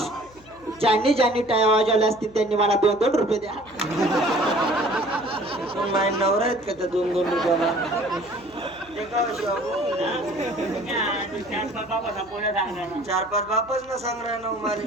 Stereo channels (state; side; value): noise; left; hum, 25 dB below the sound